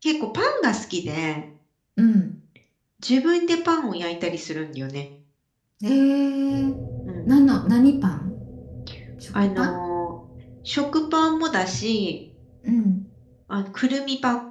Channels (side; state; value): both; identical; correlation 1.00